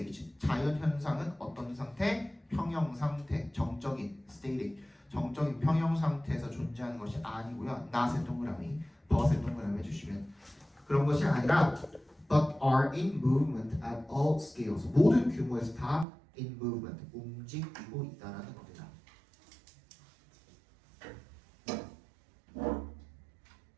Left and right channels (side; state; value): left; drops out; at 16.1 s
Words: 자연 현상은 어떤 상태? 평형 상태, 정적인 static, 정적인 평형 상태에서 존재하는 것이 아니고요. not의 동그라미, but의 동그라미 해주시면 그런 것이 아니라 but are in movement at all scales. 모든 규모에서 다 in movement, 움직이고 있다라는 겁니다.